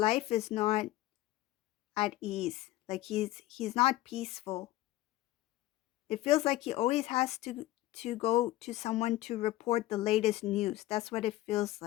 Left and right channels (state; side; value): quieter; right; 16.2 dB